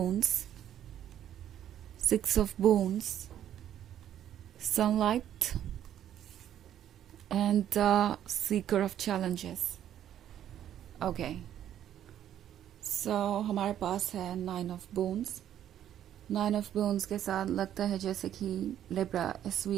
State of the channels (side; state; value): left; quieter; 10.8 dB